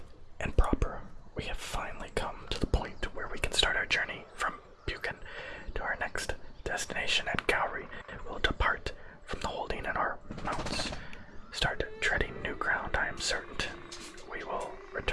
and proper, we have finally come to the point where we can start our journey from Buchan to our next destination at Gowrie. We'll depart from the holding in our mounts, start treading new ground. I am certain we will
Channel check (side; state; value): both; identical; correlation 1.00